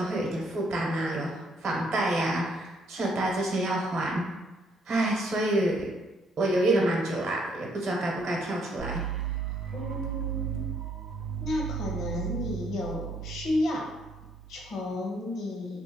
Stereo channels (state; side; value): normal; both; correlation 0.69